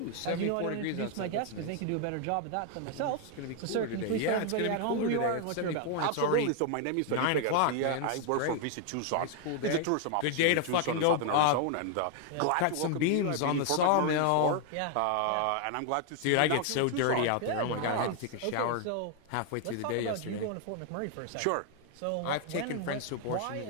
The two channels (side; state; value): both; different; correlation 0.00